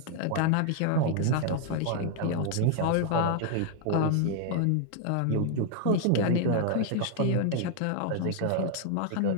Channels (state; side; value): different; both; correlation 0.00